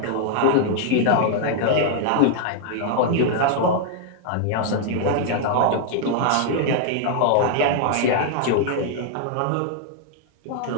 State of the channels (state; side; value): different; both; correlation 0.00